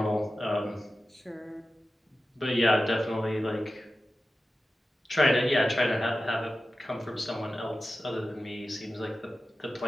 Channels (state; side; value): normal; both; correlation 0.94